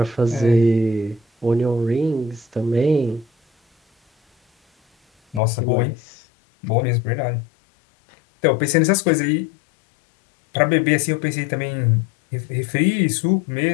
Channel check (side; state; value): right; drops out; at 5.4 s